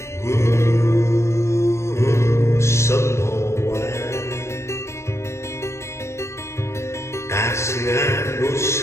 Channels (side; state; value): right; late; 0.13 ms